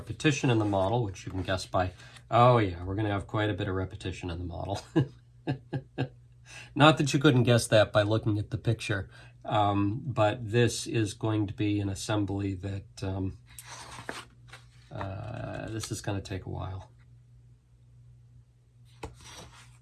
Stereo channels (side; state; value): both; identical; correlation 1.00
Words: in the model, which you can guess by, oh yeah, we're going to have quite a bit of repetition in the model. Not that you couldn't guess that by looking at the picture. But this is going to be an assembly that this is going to take a while.